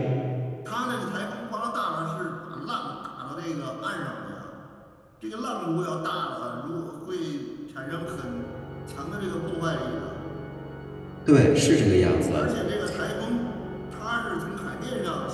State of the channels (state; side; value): identical; both; correlation 1.00